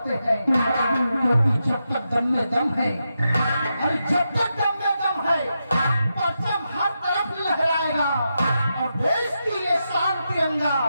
हैं, क्योंकि जब तक दम में दम है, और जब तक दम में दम है, परचम हर तरफ लहराएगा और देश की ये शान तिरंगा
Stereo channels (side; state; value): both; inverted; correlation -0.87